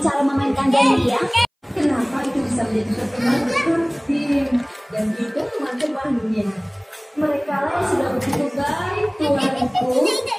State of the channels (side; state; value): both; identical; correlation 1.00